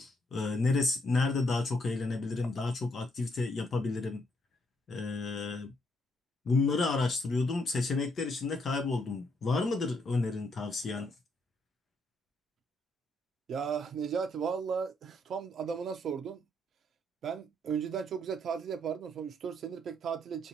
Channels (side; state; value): both; normal; correlation 0.74